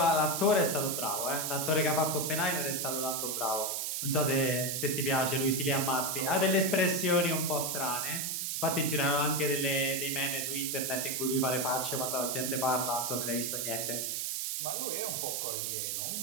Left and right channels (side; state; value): right; noise; hiss, 1 dB below the sound